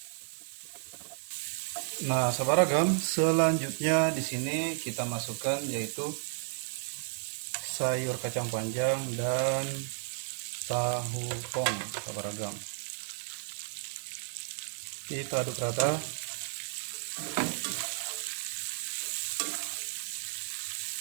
Nah, sahabat ragam, selanjutnya di sini kita masukkan yaitu sayur kacang panjang dan tahu pong, sahabat ragam. Kita aduk rata.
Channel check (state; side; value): silent; left; digital silence